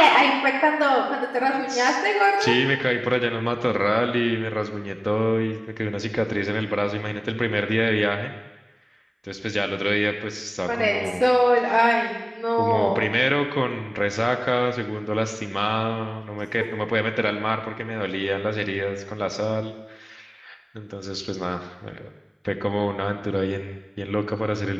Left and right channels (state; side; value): identical; both; correlation 1.00